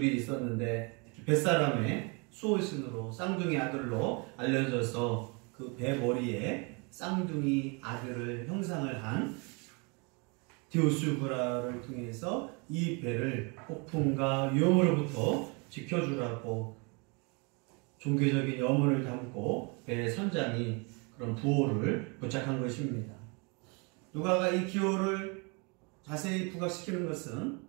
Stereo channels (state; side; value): quieter; left; 31.7 dB